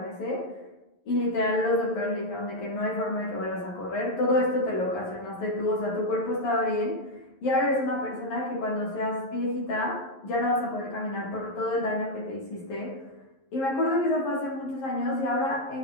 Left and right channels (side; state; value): right; late; 11 ms